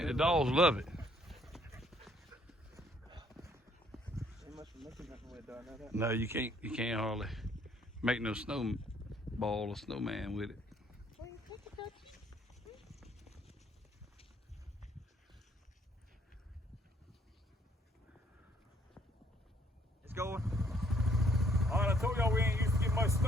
the dogs love it. Ain't much for making nothing with it, though, I know that. No, you can't hardly make no snowball or snowman with it. It's going. All right, I told y'all we ain't used to get much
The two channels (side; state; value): both; normal; correlation 0.65